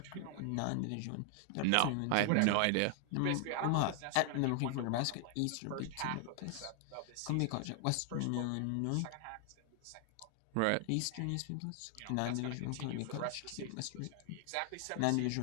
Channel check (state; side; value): different; both; correlation 0.00